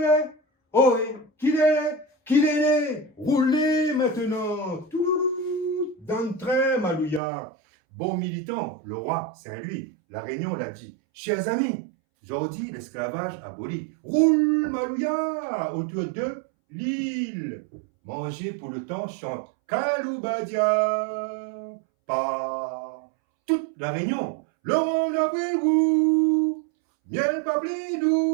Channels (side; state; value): left; drops out; at 7.2 s